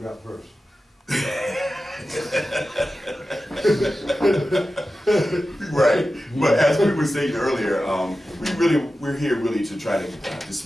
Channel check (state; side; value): normal; both; correlation 0.93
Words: up first. right. But as we were saying earlier, we're here really to try to